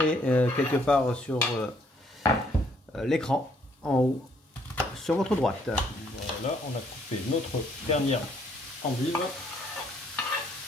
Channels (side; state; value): both; normal; correlation 0.67